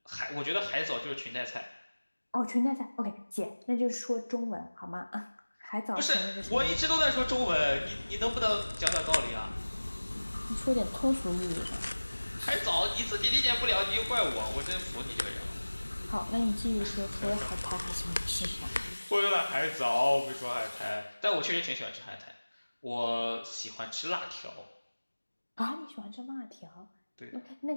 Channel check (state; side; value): inverted; both; correlation -1.00